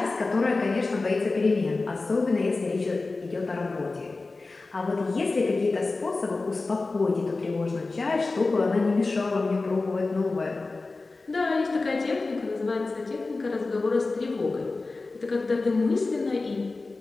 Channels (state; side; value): quieter; right; 3.6 dB